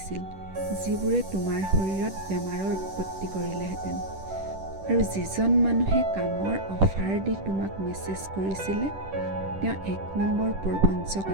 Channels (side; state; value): left; late; 10 ms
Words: যিবোৰে তোমাৰ শৰীৰত বেমাৰৰ উৎপত্তি কৰিলেহেঁতেন। আৰু যিজন মানুহে কামৰ অফাৰ দি তোমাক মেছেজ কৰিছিলে, তেওঁ 1 নম্বৰ প্ৰবঞ্চক